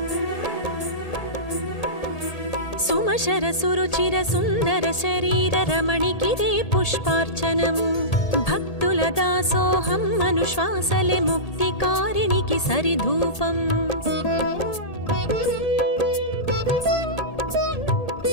సుమశర సురుచిర సుందర శరీర రమణికిదే పుష్పార్చనము భక్తుల దాసోహం అనుశ్వాసలే ముక్తికారిణికి సరిధూపం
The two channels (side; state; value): right; late; 1.8 ms